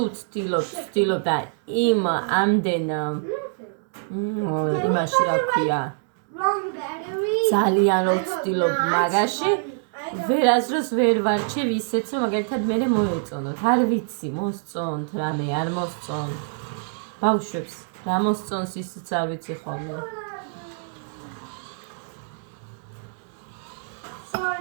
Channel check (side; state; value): left; silent; digital silence